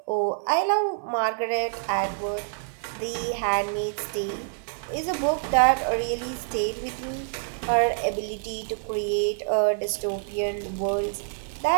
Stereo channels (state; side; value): silent; left; digital silence